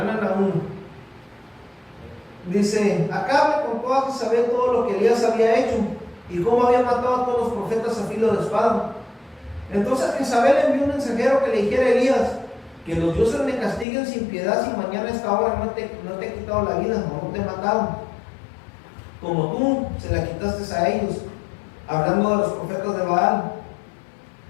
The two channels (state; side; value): drops out; right; at 13.9 s